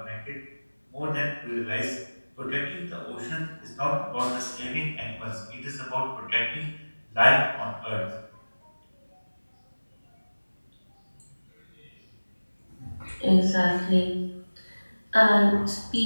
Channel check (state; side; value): inverted; both; correlation -1.00